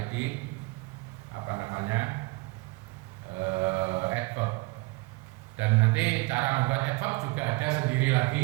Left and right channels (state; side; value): quieter; left; 23.5 dB